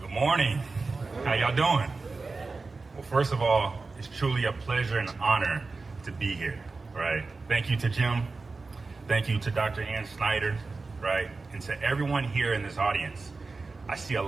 morning. How y'all doing? Well, first of all, it's truly a pleasure and honor to be here, right? Thank you to Jim. Thank you to Dr. Ann Snyder, right? And to everyone here in this audience. I see a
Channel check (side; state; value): left; quieter; 3.9 dB